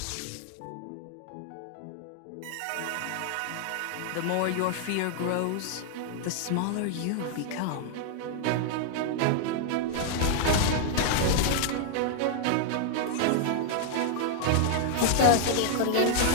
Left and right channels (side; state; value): both; different; correlation 0.00